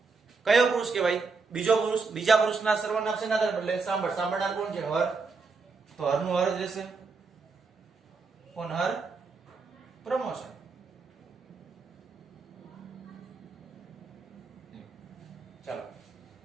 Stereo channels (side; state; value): left; quieter; 4.5 dB